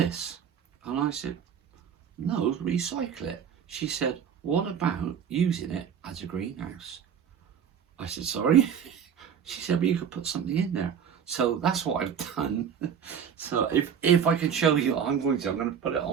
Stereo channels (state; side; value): quieter; left; 7.8 dB